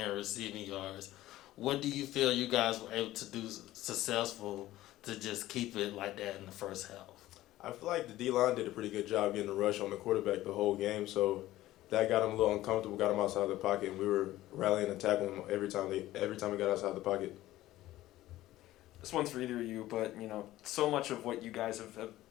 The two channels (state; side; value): quieter; right; 15.5 dB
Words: receiving yards. What do you feel you guys were able to do successful to just keep it like that in the first half? I feel like the D-line did a pretty good job getting the rush on the quarterback the whole game, so that got him a little uncomfortable, got him outside the pocket, and we were rallying and tackling him every time we got outside the pocket. This one's for either of you, but so much of what you guys have